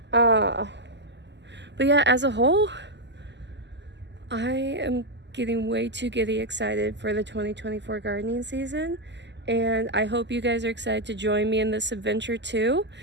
But yeah, as a whole, I am getting way too giddy excited for the 2024 gardening season, and I hope you guys are excited to join me in this adventure too.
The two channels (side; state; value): left; late; 0.51 ms